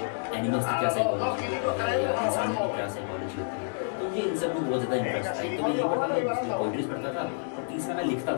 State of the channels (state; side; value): silent; right; 59 dB below the other